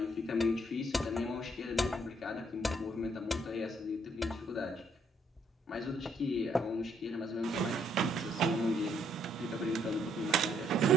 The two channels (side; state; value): both; normal; correlation 0.68